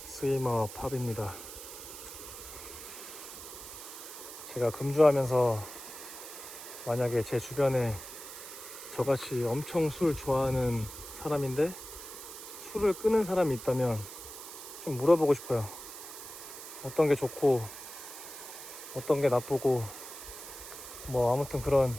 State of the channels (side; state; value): right; noise; hiss, 12 dB below the sound